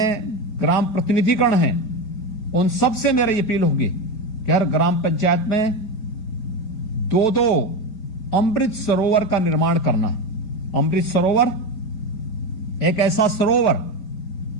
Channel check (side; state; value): right; late; 4.6 ms